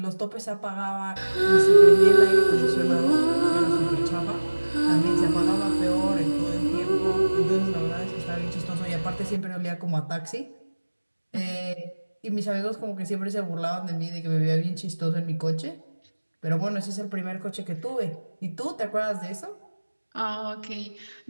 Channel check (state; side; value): inverted; both; correlation -1.00